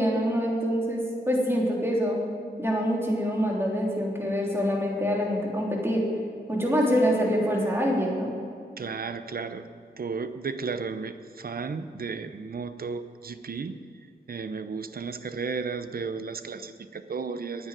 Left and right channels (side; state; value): both; normal; correlation 0.74